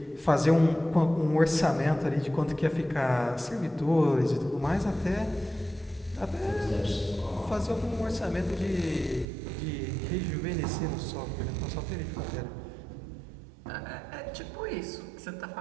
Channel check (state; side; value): drops out; left; at 9.2 s